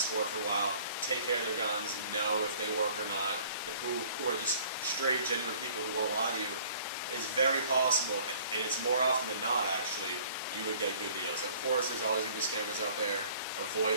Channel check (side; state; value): both; inverted; correlation -0.53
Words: for a while, take care of their guns, know if they work or not, who are just straight, genuine people who won't lie to you, it's very possible, and it's more often than not actually, you would get good deals. Of course, there's always going to be scammers out there.